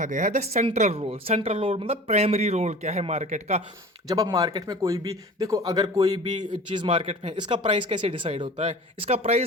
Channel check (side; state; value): both; normal; correlation 0.40